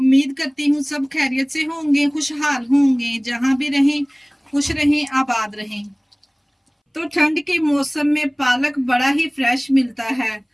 करती हूँ सब खैरियत से होंगे, खुशहाल होंगे, जहां भी रहें खुश रहें, आबाद रहें। तो ठंड के मौसम में पालक बड़ा ही फ्रेश मिलता है,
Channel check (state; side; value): identical; both; correlation 1.00